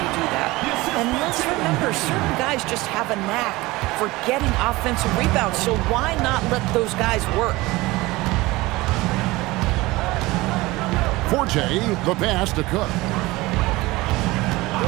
do that. And let's remember, certain guys just have a knack for getting offensive rebounds, so why not let those guys work? Forte, the pass to Cook.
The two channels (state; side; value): quieter; left; 20.6 dB